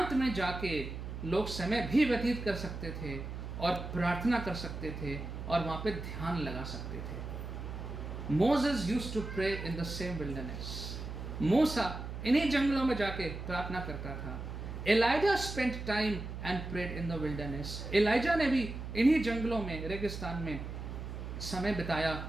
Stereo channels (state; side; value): noise; right; hum, 7 dB below the sound